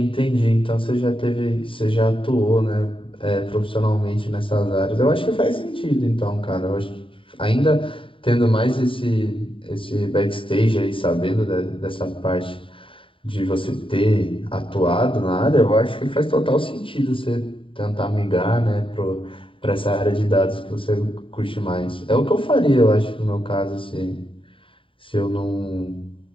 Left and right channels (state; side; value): late; right; 0.25 ms